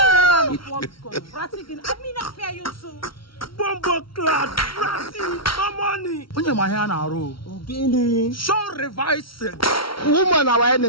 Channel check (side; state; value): right; late; 0.74 ms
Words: mean, I fear you too. Bombo clat ratty. No money. Onye ma ihe na arụ. Ogene. Show revising. Woman our